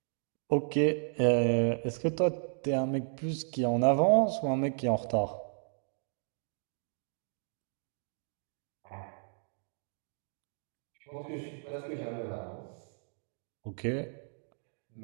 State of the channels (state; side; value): silent; left; digital silence